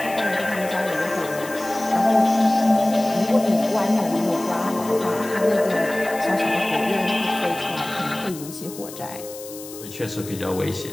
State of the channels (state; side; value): noise; left; hiss, 14 dB below the sound